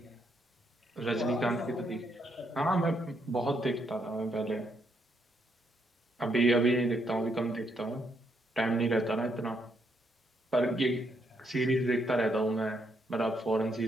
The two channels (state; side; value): normal; both; correlation 0.76